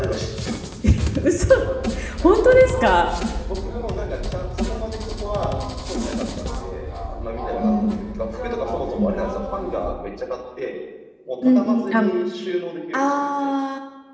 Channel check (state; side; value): identical; both; correlation 1.00